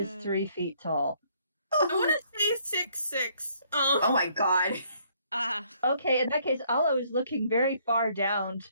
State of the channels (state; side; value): inverted; both; correlation -0.65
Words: 3 feet tall. I want to say 6'6". Oh my god. Ah. Okay, in that case, Ollo is looking very far down